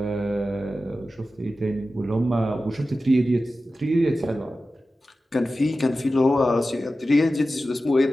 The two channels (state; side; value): normal; both; correlation 0.94